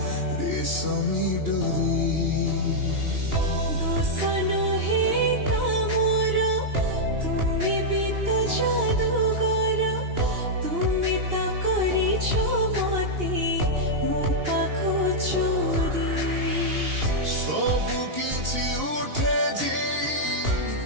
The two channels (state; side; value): late; left; 2.8 ms